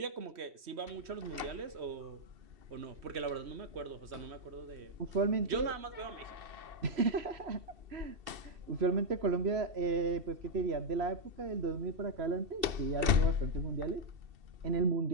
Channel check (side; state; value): left; late; 2.7 ms